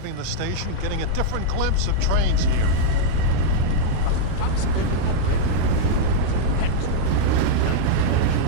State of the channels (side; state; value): both; different; correlation -0.02